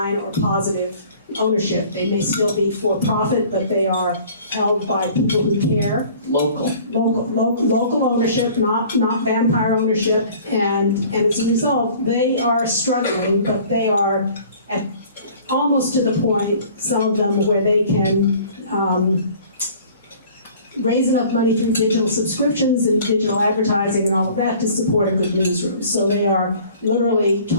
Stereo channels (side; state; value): both; inverted; correlation -0.50